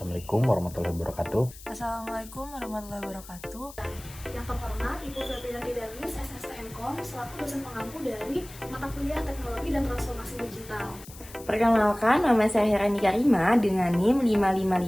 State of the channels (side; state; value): left; noise; hiss, 18 dB below the sound